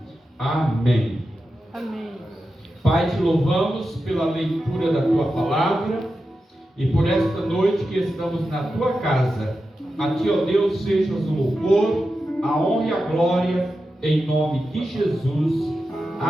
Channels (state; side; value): normal; both; correlation 0.91